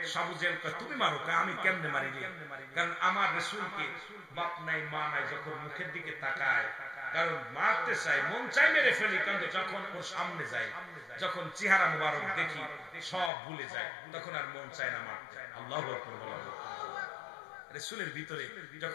আবু জেহেল কয় তুমি মারো, আমি কেমনে মারি রে? কারণ আমার রাসূলকে বাপ নাই মা নাই, যখন মুখের দিকে তাকায়, কারণ মারতে চাই, মন চাই মেরে ফেলি, কিন্তু যখন ওর সামনে যায়, যখন চেহারা মুবারক দেখি সব ভুলে যায়, তখন আর মন চায় না মারতে। আল্লাহু আকবার বলেন। রাসূলের ভিতরে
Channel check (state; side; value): drops out; right; at 13.3 s